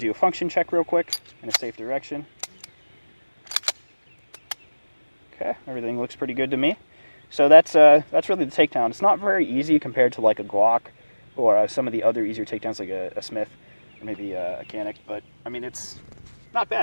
a function check real quick in a safe direction. Okay, everything looks pretty good to me. So that's really the takedown. It's not very easy compared to like a Glock or some of the other easier takedowns like a Smith or maybe a Canic, but I mean, it's not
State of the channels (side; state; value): both; inverted; correlation -1.00